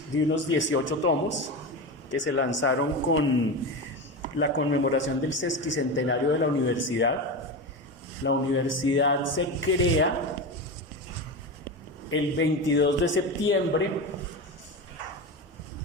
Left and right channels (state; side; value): normal; both; correlation 0.21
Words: de unos 18 tomos que se lanzaron con la conmemoración del sesquicentenario de la universidad. La universidad se crea el 22 de septiembre